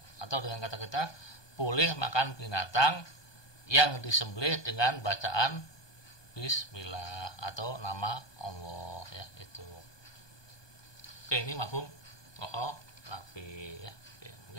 Atau dengan kata kita boleh makan binatang yang disembelih dengan bacaan bismillah atau nama Allah ya itu. Oke, ini mafhum mukhalafi ya. Oke,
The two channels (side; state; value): right; late; 1.2 ms